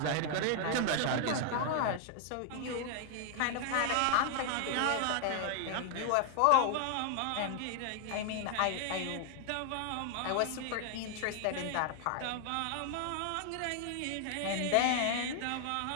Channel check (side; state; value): both; different; correlation 0.00